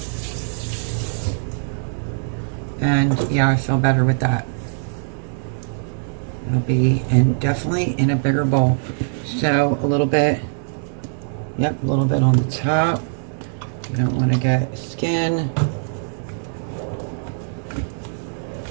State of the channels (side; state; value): left; silent; digital silence